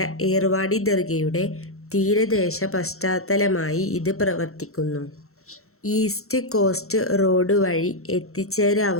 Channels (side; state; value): right; late; 0.63 ms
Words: ഏർവാടി ദർഗയുടെ തീരദേശ പശ്ചാത്തലമായി ഇത് പ്രവർത്തിക്കുന്നു. ഈസ്റ്റ് കോസ്റ്റ് റോഡ് വഴി